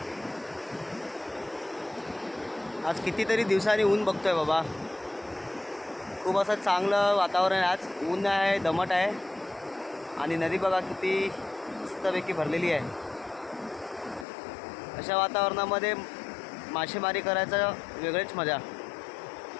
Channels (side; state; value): right; drops out; at 14.2 s